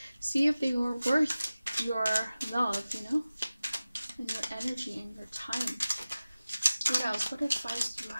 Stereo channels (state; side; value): inverted; both; correlation -0.96